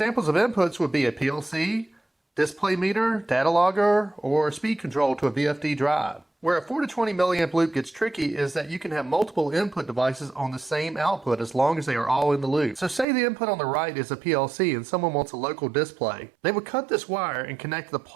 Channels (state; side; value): drops out; left; at 13.1 s